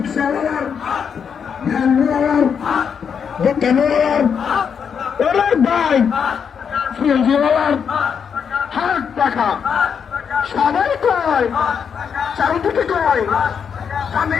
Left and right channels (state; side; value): quieter; right; 7.0 dB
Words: ভ্যানওয়ালার দোকানওয়ালার অনেক ভাই ফ্রিজওয়ালার হাত পাকা সবাই কয় চারিদিকে কয়